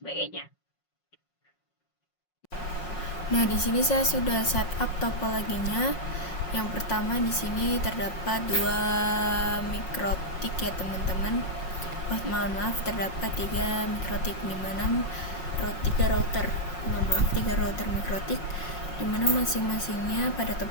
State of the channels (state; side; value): late; right; 5.5 ms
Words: Nah, di sini saya sudah setup topologinya. Yang pertama di sini terdapat 2 mikrotik ya teman-teman. Maaf, terdapat 3 mikrotik di mana 3 router. Mohon maaf, 3 router mikrotik di mana masing-masingnya pada